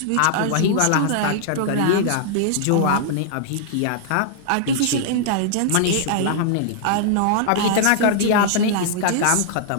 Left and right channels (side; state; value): both; different; correlation -0.01